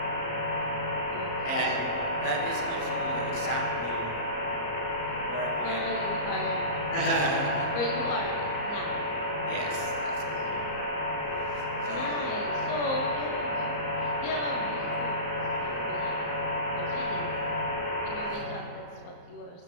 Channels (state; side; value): late; right; 34 ms